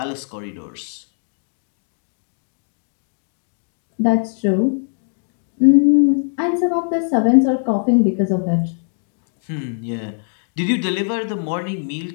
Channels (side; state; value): right; silent; digital silence